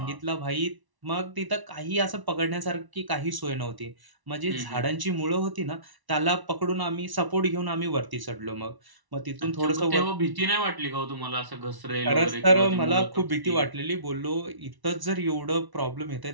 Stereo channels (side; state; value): left; late; 1.0 ms